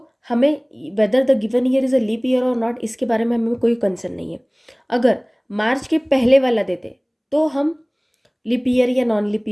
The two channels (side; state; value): both; identical; correlation 1.00